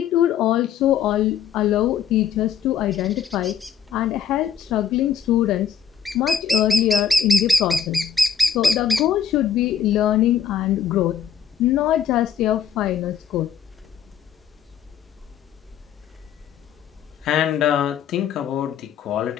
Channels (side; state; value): right; quieter; 8.0 dB